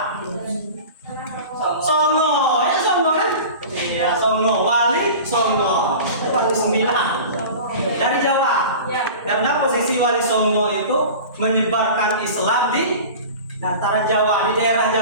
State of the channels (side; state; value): both; inverted; correlation -0.36